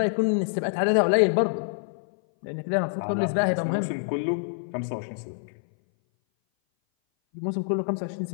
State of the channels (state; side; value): silent; right; 59 dB below the other